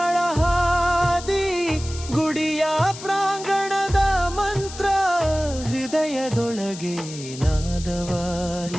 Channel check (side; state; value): left; noise; hiss, 13 dB below the sound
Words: ಹಾದಿ, ಗುಡಿಯ ಪ್ರಾಂಗಣದ ಮಂತ್ರ ಹೃದಯದೊಳಗೆ